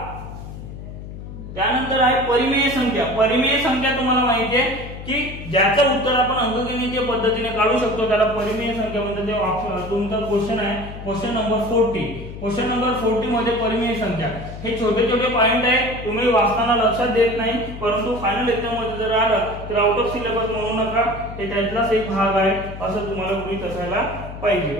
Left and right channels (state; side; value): noise; left; hum, 11 dB below the sound